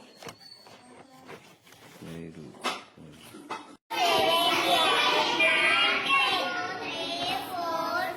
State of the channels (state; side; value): identical; both; correlation 1.00